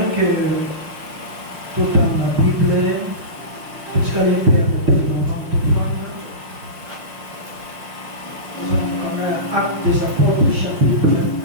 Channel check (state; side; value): late; left; 6.0 ms